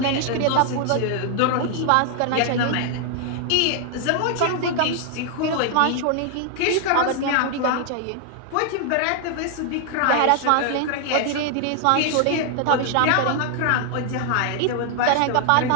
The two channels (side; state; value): both; different; correlation 0.00